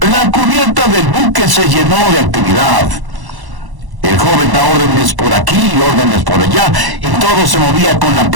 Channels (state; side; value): late; left; 1.1 ms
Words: la cubierta del buque se llenó de actividad. El joven da órdenes por aquí y órdenes por allá, y todo se movía con la